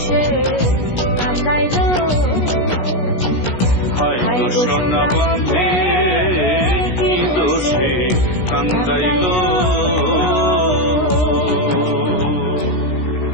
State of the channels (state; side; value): late; right; 16 ms